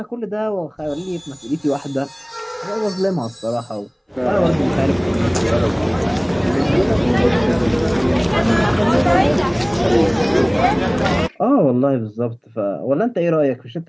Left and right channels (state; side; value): identical; both; correlation 1.00